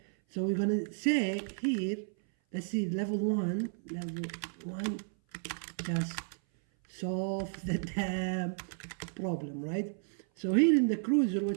So we're going to say here, let's see, level 1, just solve the damn problem, right? So here in the cruiser,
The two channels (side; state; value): left; silent; 56 dB below the other